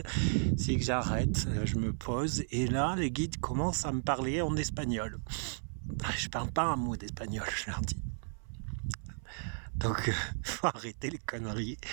c'est que j'arrête, je me pose et là, les guides commencent à me parler en espagnol. Je parle pas un mot d'espagnol, je leur dis. Donc, faut arrêter les conneries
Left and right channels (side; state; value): left; silent; 55 dB below the other